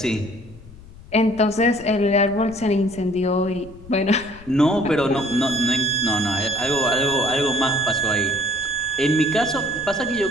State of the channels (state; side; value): noise; left; rumble, 20 dB below the sound